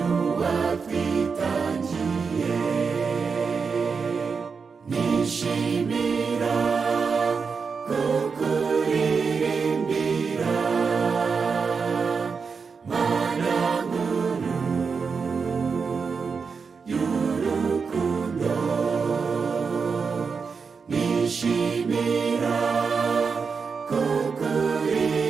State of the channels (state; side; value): quieter; left; 5.4 dB